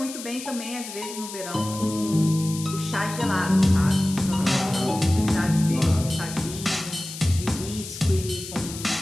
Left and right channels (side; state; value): left; noise; hiss, 11 dB below the sound